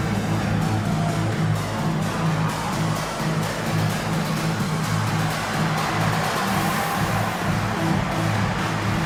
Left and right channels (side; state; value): both; identical; correlation 1.00